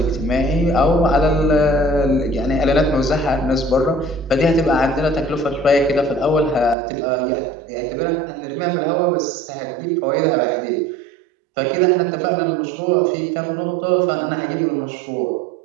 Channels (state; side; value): drops out; left; at 6.8 s